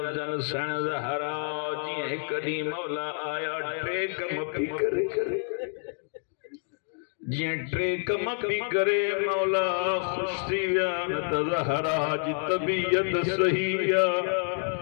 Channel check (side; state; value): right; silent; 59 dB below the other